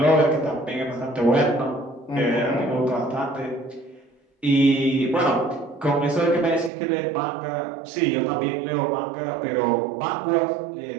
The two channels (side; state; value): left; drops out; at 6.7 s